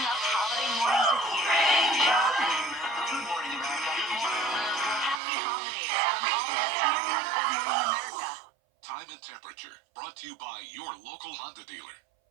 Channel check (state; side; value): drops out; left; at 5.2 s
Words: up holiday mornings with you. Good morning, America. Happy holidays from all of us here at Good Morning America. Time and temperature brought to you by your local Honda dealer.